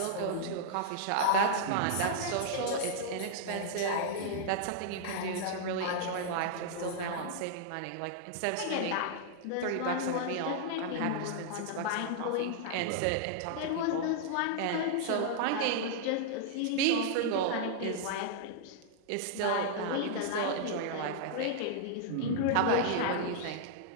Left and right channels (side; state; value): both; different; correlation -0.01